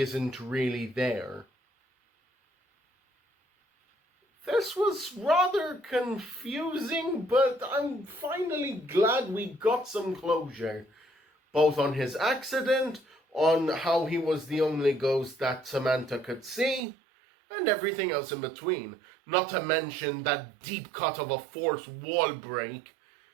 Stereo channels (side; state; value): left; drops out; at 16.8 s